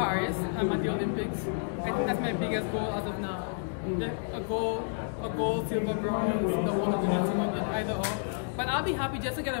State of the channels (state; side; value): silent; right; digital silence